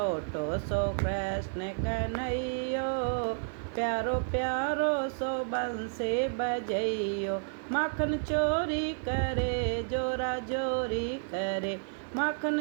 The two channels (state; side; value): silent; left; 57 dB below the other